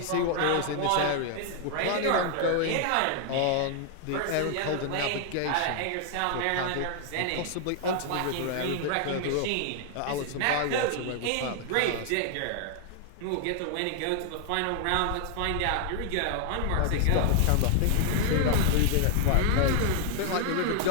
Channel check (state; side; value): different; both; correlation 0.00